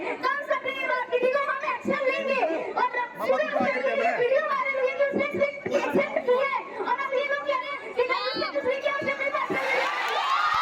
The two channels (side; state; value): both; identical; correlation 1.00